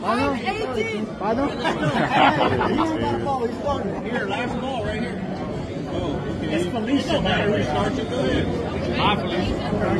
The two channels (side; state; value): both; identical; correlation 1.00